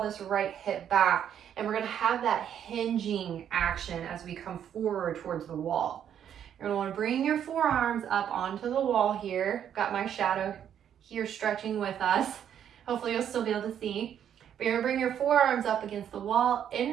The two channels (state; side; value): quieter; left; 9.4 dB